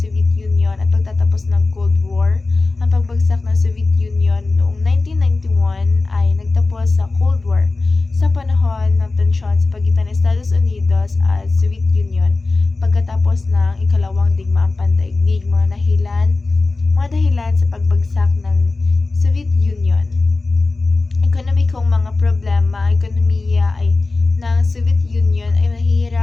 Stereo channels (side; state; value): right; quieter; 3.5 dB